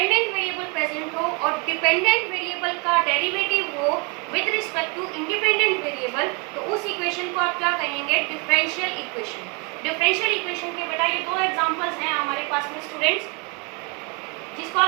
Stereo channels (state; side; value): quieter; left; 31.7 dB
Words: variable present हो और डिपेंडेंट वेरिएबल का डेरिवेटिव हो with respect to independent variable, तो उस इक्वेशन को आप क्या कहेंगे? Differential equation. डिफरेंशियल इक्वेशन के बेटा ये दो एग्जांपल्स हैं हमारे पास में स्टूडेंट्स, जिसको